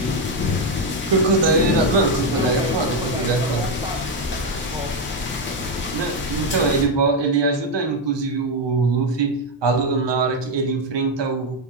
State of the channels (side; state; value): both; normal; correlation 0.05